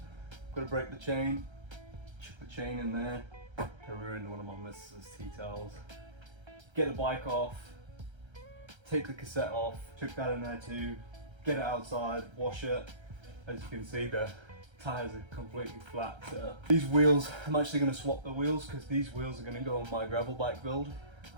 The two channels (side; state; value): left; late; 1.3 ms